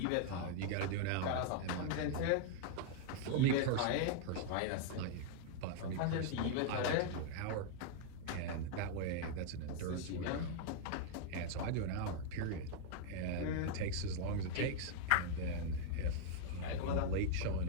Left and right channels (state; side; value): different; both; correlation 0.00